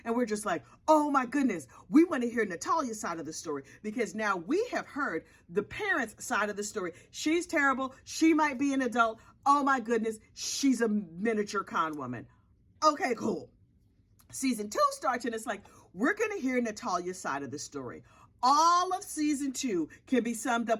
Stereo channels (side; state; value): both; identical; correlation 1.00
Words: and we're just like, oh my goodness, we want to hear Natalia's side of the story, because now we have heard the parents' side of the story. She's terrible. She might be an adult. Oh my goodness, she's a miniature con woman. Okay, cool. Season 2 starts and it's like, we're going to hear Natalia's side of the story. All of season 2 can be summed